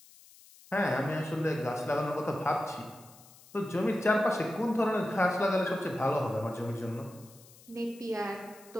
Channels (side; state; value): left; noise; hiss, 23 dB below the sound